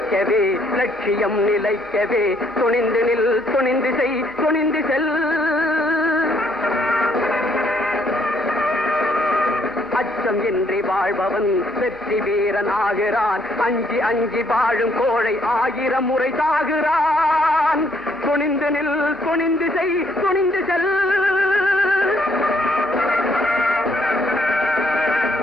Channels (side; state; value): right; noise; rumble, 30 dB below the sound